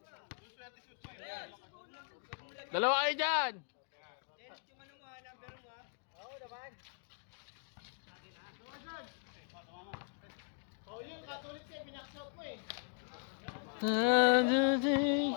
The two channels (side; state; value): right; silent; 52 dB below the other